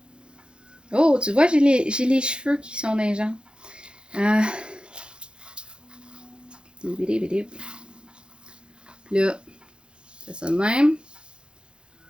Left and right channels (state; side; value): late; left; 0.051 ms